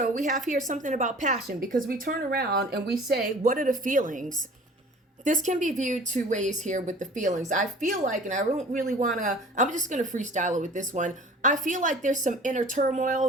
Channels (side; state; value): both; normal; correlation 0.46